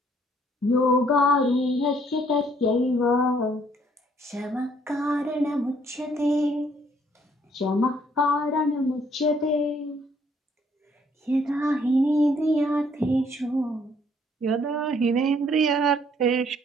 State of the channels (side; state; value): both; normal; correlation 0.65